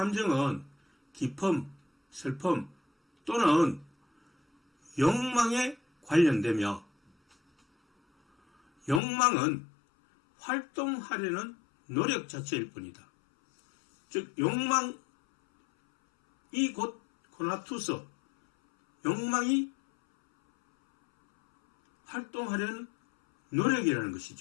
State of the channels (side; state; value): right; drops out; at 9.0 s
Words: 기쁨, 슬픔 또는 욕망에 관련되며, 욕망은 활동하려는 노력 자체일 뿐이다. 즉 욕망이 곧 코나투스, 욕망이 활동하려는 노력이라는